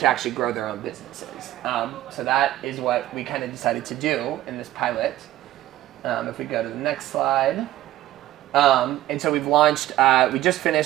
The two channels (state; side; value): quieter; left; 14.7 dB